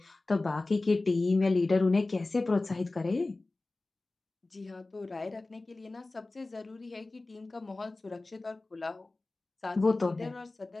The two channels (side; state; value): right; quieter; 3.2 dB